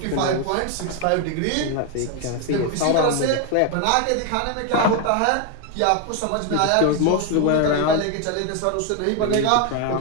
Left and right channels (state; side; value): different; both; correlation 0.01